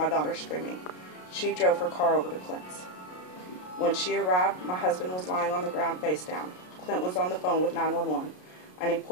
daughter screaming. She drove her car over to Clint's. When she arrived, my husband was lying on the ground face down. Clint was on the phone with 911, and he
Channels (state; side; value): late; right; 33 ms